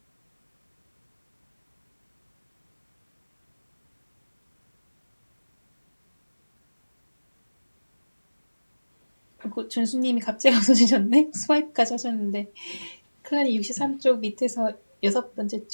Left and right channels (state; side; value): inverted; both; correlation -1.00